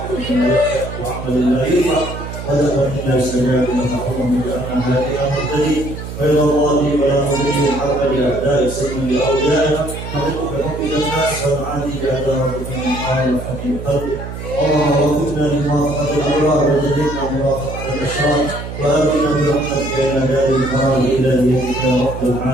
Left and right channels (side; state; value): right; noise; hum, 9 dB below the sound